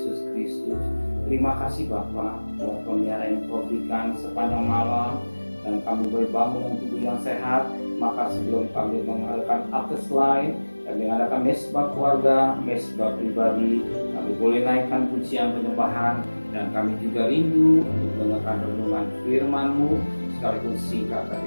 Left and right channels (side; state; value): both; inverted; correlation -1.00